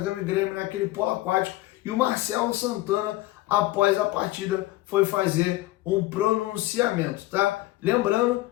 e Grêmio naquele polo aquático, e o Marcelo Santana, após a partida, foi fazer um pronunciamento, tá? Lembrando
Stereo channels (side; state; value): right; quieter; 17.5 dB